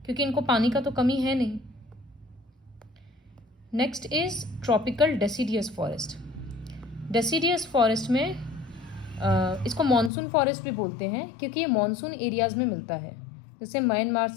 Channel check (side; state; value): right; drops out; at 10.1 s